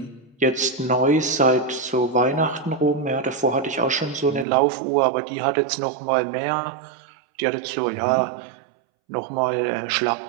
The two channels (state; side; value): drops out; left; at 4.5 s